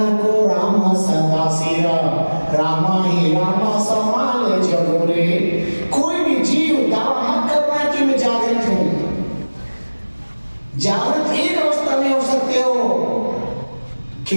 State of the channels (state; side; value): inverted; both; correlation -1.00